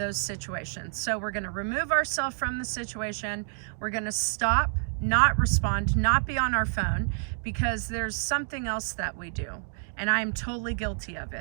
situations. So we're going to remove ourselves from the situation. We're going to stop, not respond, not be on our phone, because there's something else that we do, and I'm totally guilty of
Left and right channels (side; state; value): left; silent; digital silence